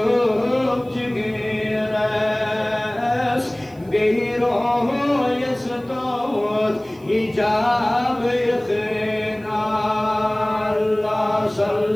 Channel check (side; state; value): right; noise; hiss, 29 dB below the sound